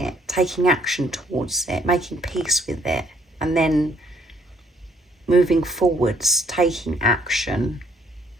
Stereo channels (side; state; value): both; normal; correlation 0.67